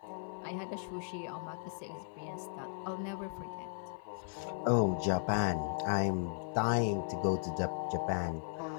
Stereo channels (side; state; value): right; silent; 53 dB below the other